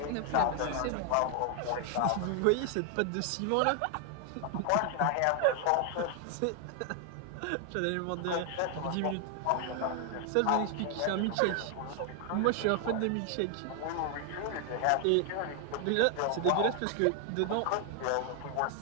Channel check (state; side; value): different; both; correlation 0.00